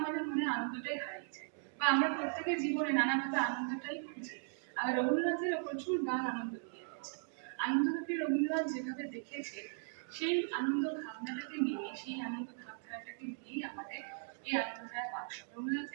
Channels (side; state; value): left; silent; digital silence